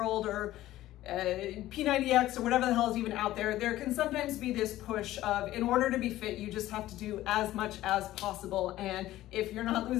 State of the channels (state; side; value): quieter; right; 15.0 dB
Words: or P90X or whatever the hell is even out there, there can sometimes be this push of, in order to be fit, you just have to do as much as possible. And if you're not